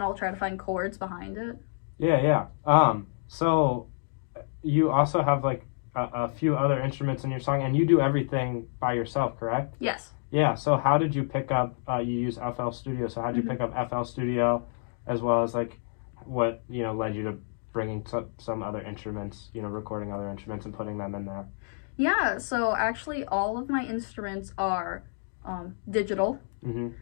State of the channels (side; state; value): right; silent; digital silence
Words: I'll try to find chords behind it. Yeah. So you also have, like, a few other instruments in your song, and you do everything by yourself, correct? Yes. Yeah, so how did you pick up, you use FL Studio, so how did you pick up FL Studio, as well as, like, what, led you to bringing some other instruments, recording other instruments and putting them in there? Yeah, so actually all of my instruments are digital.